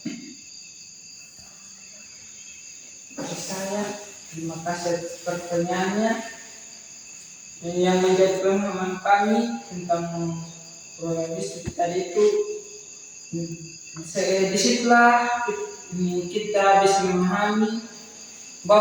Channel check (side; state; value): both; identical; correlation 1.00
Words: Bagi saya, terima kasih atas pertanyaannya. Yang menjadi pemahaman kami tentang pluralisme tadi itu, disitulah kita bisa memahami